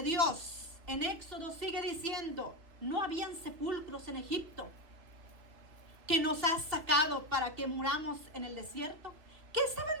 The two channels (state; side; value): late; left; 2.7 ms